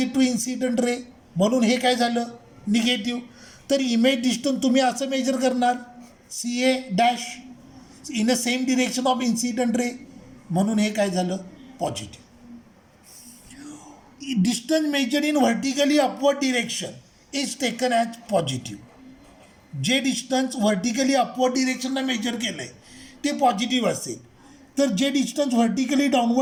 टू इन्सिडंट रे, म्हणून हे काय झालं, निगेटिव्ह. तर इमेज डिस्टन्स तुम्ही असं मेजर करणार CA' in a same direction of incident ray, म्हणून हे काय झालं, positive. Distance measured in vertically upward direction is taken as positive. जे डिस्टन्स व्हर्टिकली अपवर्ड डिरेक्शनला मेजर केलं आहे ते पॉझिटिव्ह असेल. तर जे डिस्टन्स व्हर्टिकली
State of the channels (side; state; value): both; identical; correlation 1.00